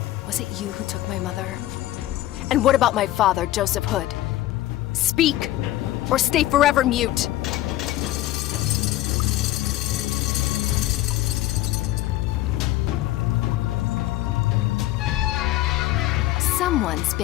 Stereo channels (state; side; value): quieter; right; 15.3 dB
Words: Was it you who took my mother? And what about my father, Joseph Hood? Speak, or stay forever mute. Someone's